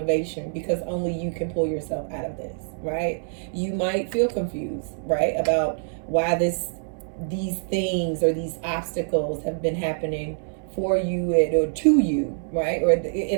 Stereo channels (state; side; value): silent; left; 62 dB below the other